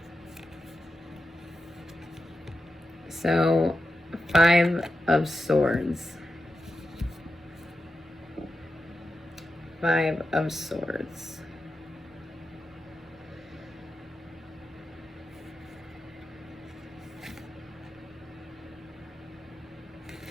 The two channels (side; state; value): both; normal; correlation 0.89